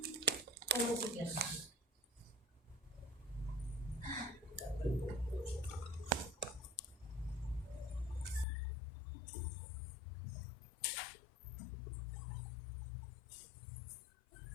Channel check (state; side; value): drops out; right; at 8.5 s